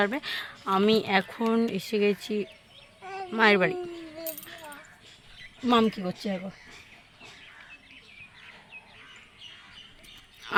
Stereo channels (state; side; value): identical; both; correlation 1.00